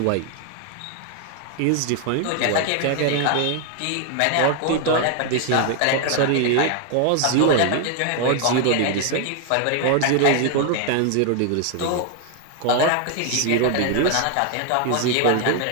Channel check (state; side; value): different; both; correlation 0.00